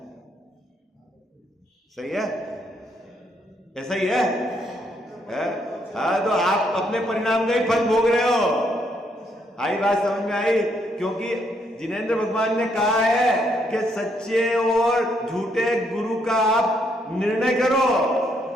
सही है? ऐसा ही है? हाँ, तो आप अपने परिणाम का ही फल भोग रहे हो। आई बात समझ में आई? क्योंकि जिनेंद्र भगवान ने कहा है कि सच्चे और झूठे गुरु का आप निर्णय करो।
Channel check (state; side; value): normal; both; correlation 0.73